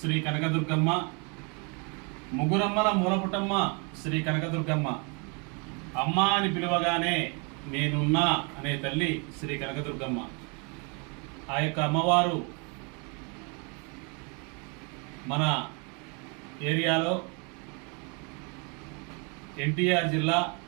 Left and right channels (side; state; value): left; quieter; 33.7 dB